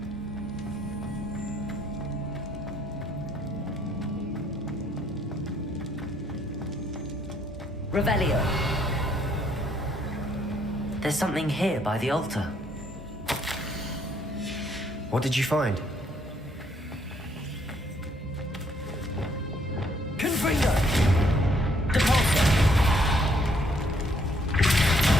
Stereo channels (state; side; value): normal; both; correlation 0.68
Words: Revelio. There's something here by the altar. What did you find? Confringo! Depulsor!